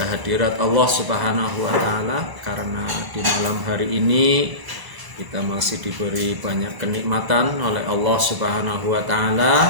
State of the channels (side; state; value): left; late; 1.0 ms